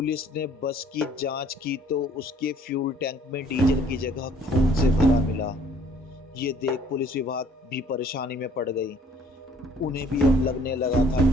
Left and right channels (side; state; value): both; normal; correlation 0.58